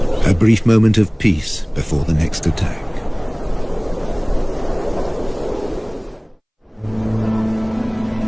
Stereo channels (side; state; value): both; identical; correlation 1.00